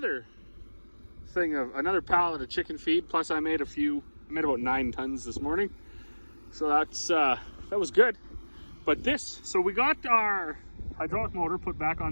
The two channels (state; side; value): inverted; both; correlation -1.00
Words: pallet of chicken feed. Plus I made about 9 tons this morning. So that was good. But so we got our hydraulic motor put back on